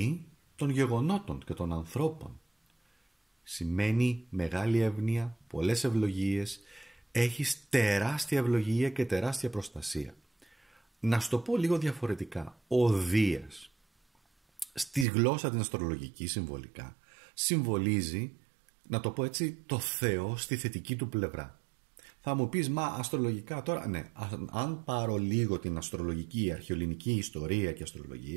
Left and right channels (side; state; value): left; drops out; at 15.1 s